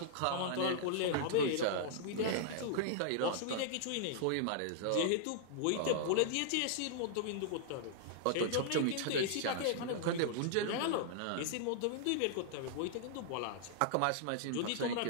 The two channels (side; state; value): both; different; correlation -0.01